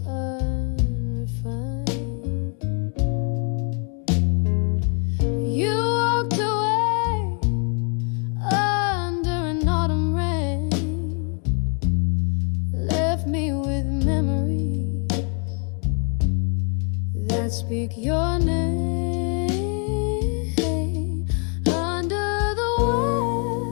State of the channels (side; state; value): right; quieter; 39.1 dB